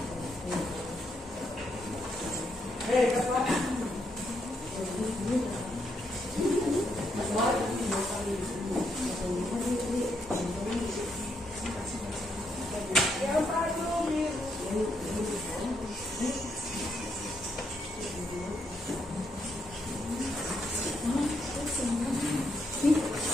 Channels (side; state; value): both; normal; correlation 0.78